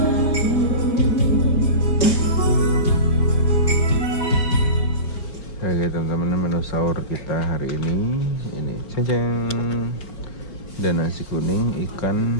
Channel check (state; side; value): late; right; 4.6 ms